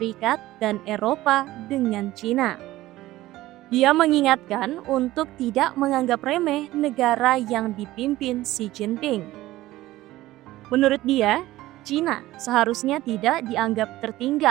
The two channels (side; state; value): left; quieter; 16.5 dB